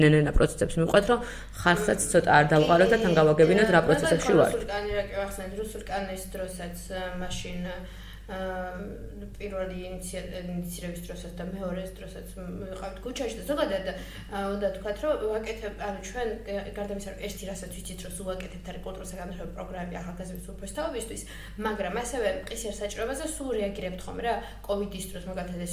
ნენენა პროცესებს მიყვეთ რომ ხალხსაც ცოტა არ დავყაროთ და თან გავაგებინოთ რა პროცესებში ვართ. რუსულ კანონის დროსაც მაშინ პირველი ინიციირების დროსაც და მეორეს დროსაც ვიყავთ ქუჩაში და ზოგადად უნდა თქვათ რომ ვაკეთებ, ანუ ჩვენ გარდა იმისა რომ ერთი რასაც ვიცით რომ უაკეთებთ არის კულტურის განვითარების პროგრამები ახალგაზრდების უფროს თაობისთვის, მაგრამ ასევე მყისიერ საჭიროებაზე სულ რეაგირებთ ხომ რა, კოვიდის დროს მაგალითად ეს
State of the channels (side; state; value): both; identical; correlation 1.00